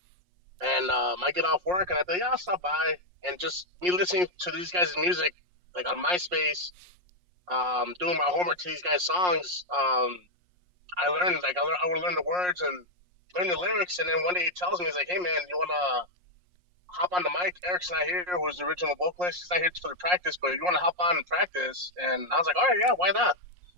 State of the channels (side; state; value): left; late; 5.6 ms